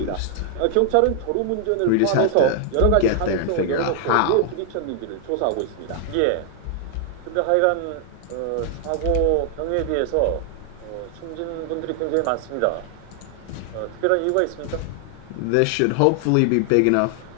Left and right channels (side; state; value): both; different; correlation 0.00